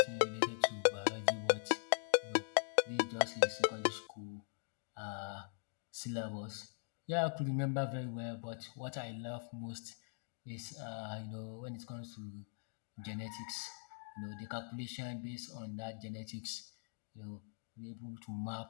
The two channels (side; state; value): right; silent; digital silence